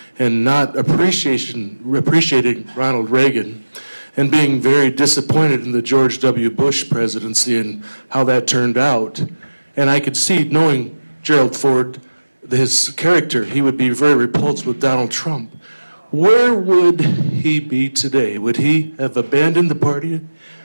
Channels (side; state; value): both; inverted; correlation -1.00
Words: and not appreciating Ronald Reagan, and being very disappointed in the George W. Bush presidency and how that turned out. And I could see, knowing Gerald Ford, his character, he would be very repulsed with Donald Trump. Where would he be today? Would he have abandoned the party?